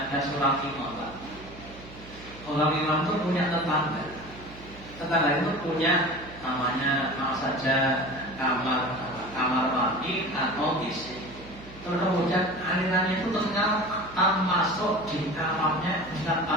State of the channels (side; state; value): right; noise; hum, 17 dB below the sound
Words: seorang imam, Pak. Orang imam itu punya tetangga. Tetangga itu punya namanya apa saja kamar mandi atau WC. Terus kemudian alirannya itu ternyata masuk di kamarnya Ustaz